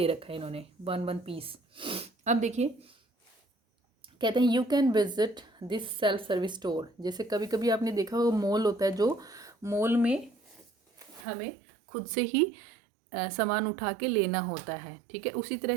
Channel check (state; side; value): drops out; left; at 11.2 s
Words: रखा है इन्होंने, वन पीस. अब देखिए, कहते हैं you can visit this self service store. जैसे कभी कभी आपने देखा होगा मॉल होता है, जो मॉल में हमें खुद से ही सामान उठा के लेना होता है. ठीक है, उसी